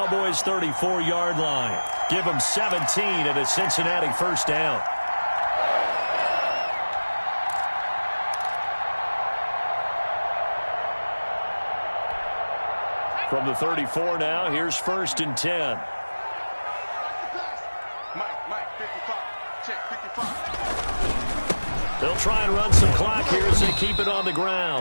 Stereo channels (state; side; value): inverted; both; correlation -1.00